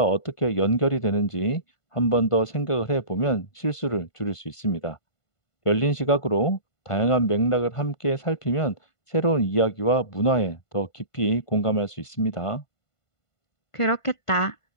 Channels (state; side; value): late; right; 1.5 ms